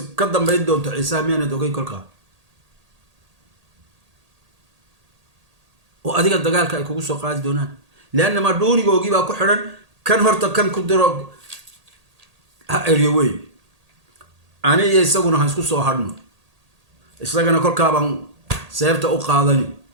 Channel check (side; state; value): left; late; 1.8 ms